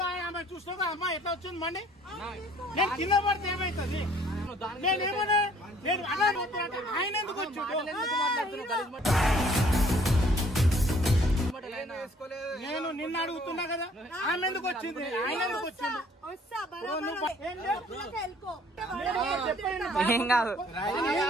ఆమె చూసుకోగా అమ్మా ఎట్లా వచ్చింది బండి, నేను కింద పడితే ఏమైతుంది? నేనేమన్నా నేను అలా ఆయన ఎందుకు వచ్చాడు? నేను నిన్న అడుగుతున్నా కదా, ఆమె ఎందుకు వచ్చింది, ఆయన ఎందుకు వచ్చింది?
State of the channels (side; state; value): both; normal; correlation 0.58